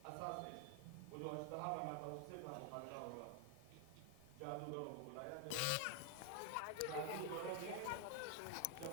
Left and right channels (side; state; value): both; different; correlation 0.00